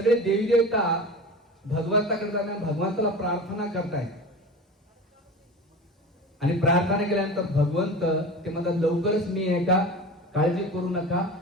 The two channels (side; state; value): both; normal; correlation 0.33